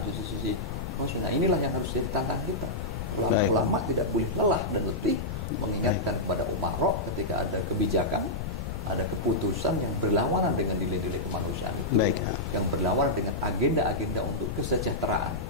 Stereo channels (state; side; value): noise; left; rumble, 6 dB below the sound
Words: sisi-sisi manusia. Nah, inilah yang harus jadi tantangan kita. Ulama tidak boleh lelah dan letih mengingatkan kepada umarok ketika ada kebijakan, ada keputusan yang berlawanan dengan nilai-nilai kemanusiaan itu, yang berlawanan dengan agenda-agenda untuk kesejahteraan,